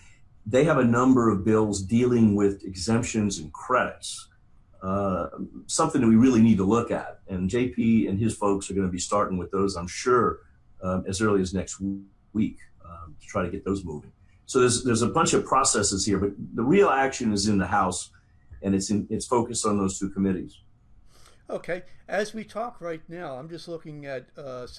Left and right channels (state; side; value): identical; both; correlation 1.00